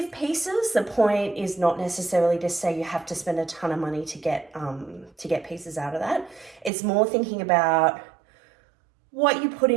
pieces. The point is not necessarily to say you have to spend a ton of money to get pieces out of that. It's more thinking about what you put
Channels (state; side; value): drops out; left; at 6.7 s